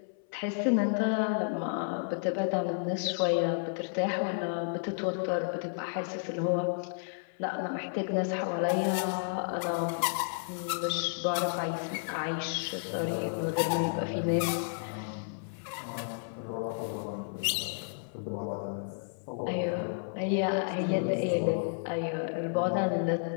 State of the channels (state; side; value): silent; right; 57 dB below the other